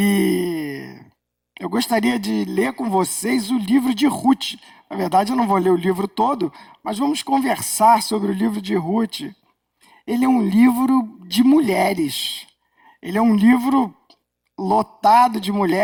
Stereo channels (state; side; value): identical; both; correlation 1.00